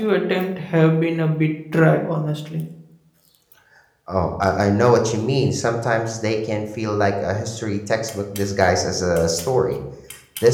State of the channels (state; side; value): identical; both; correlation 1.00